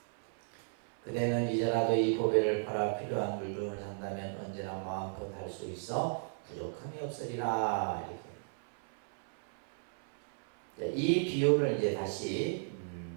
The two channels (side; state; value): left; silent; 54 dB below the other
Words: 그대는 이제라도 이 보배를 팔아 필요한 물건을 산다면 언제나 마음껏 할 수 있어 부족함이 없으리라. 이렇게. 이 비유를 이제 다시